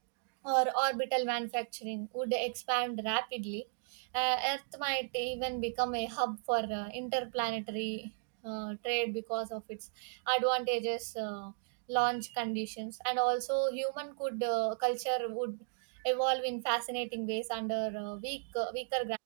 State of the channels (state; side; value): silent; left; digital silence